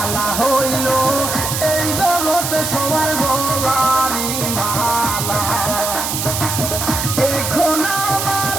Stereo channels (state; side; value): noise; right; hiss, 2 dB below the sound